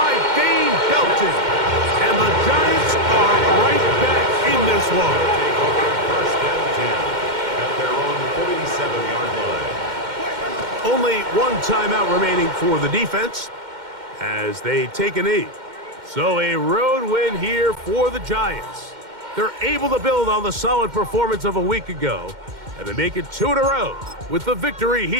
Dane Belton. And the Giants are right back in this one. 1st and 10 at their own 47-yard line. Only one timeout remaining for the defense as they take a knee. So a road win here for the Giants. They're able to build on the solid performance of a week ago, and they make it 2 in a row with the victory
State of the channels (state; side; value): late; left; 2.1 ms